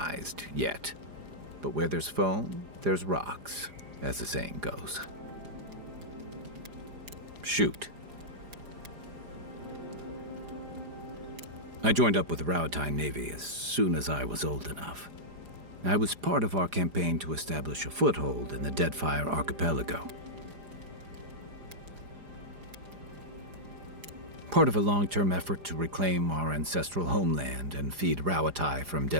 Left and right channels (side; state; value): left; late; 4.9 ms